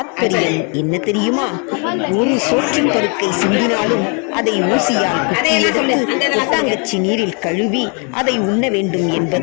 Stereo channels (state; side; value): quieter; right; 36.6 dB